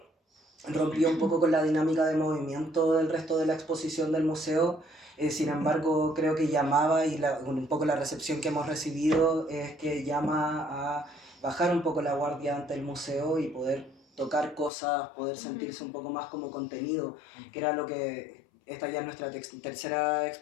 rompía un poco con la dinámica de movimiento del resto de la exposición del museo. Sin embargo, creo que llamaba, y un poco la recepción que hemos recibido es que llama a bajar un poco la guardia ante el museo y poder tocar cosas, poder sentirse un poco más como contenido, que era lo que esta ya es nuestra tercera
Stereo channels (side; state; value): right; drops out; at 14.7 s